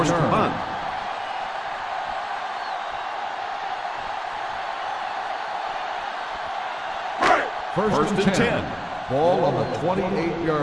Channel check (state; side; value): identical; both; correlation 1.00